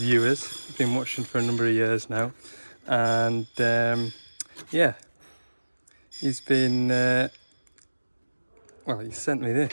I've been watching for a number of years now, and yeah, he's been well, he sent me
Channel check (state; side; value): inverted; both; correlation -1.00